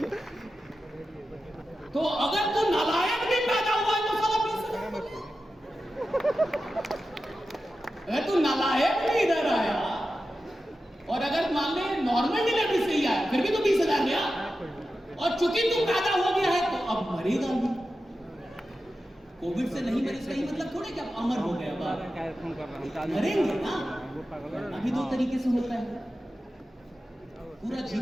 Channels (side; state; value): both; normal; correlation 0.92